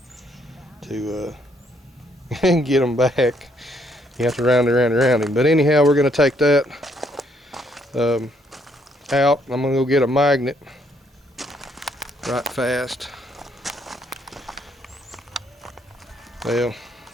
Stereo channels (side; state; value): both; normal; correlation 0.70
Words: get them back. You have to round him. But anyhow, we're gonna take that out. I'm gonna go get a magnet right fast. Well,